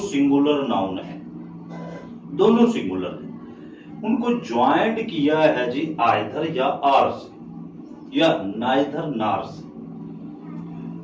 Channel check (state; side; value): identical; both; correlation 1.00